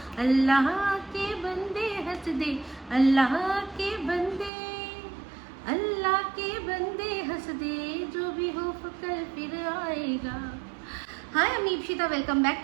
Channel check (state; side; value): drops out; left; at 4.5 s